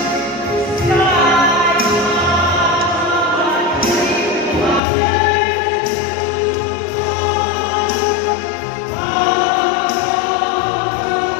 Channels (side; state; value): right; drops out; at 4.8 s